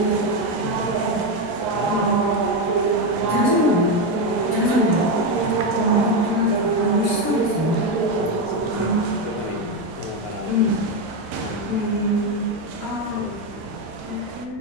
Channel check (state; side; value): normal; both; correlation 0.09